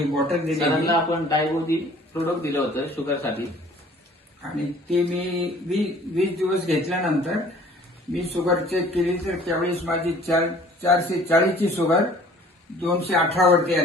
बॉटल दिली सरांना आपण डायबोदी प्रोडक्ट दिलं होतं शुगरसाठी आणि ते मी 20 दिवस घेतल्यानंतर मी शुगर चेक केली तर त्यावेळेस माझी 440 ची शुगर 218 वरती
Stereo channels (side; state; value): both; normal; correlation 0.52